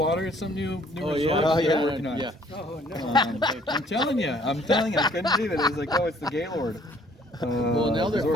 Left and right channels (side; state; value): both; normal; correlation 0.60